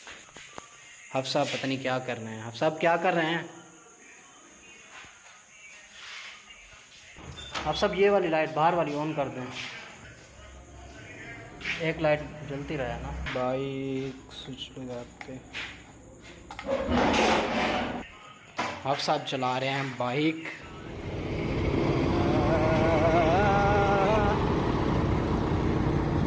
आप साहब पता नहीं क्या कर रहे हैं। आप साहब क्या कर रहे हैं? आप सब ये वाली लाइट बाहर वाली ऑन कर दें। एक लाइट जलती रहे ना। बाइक स्विच लगाते। आप साहब चला रहे हैं बाइक।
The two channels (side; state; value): both; identical; correlation 1.00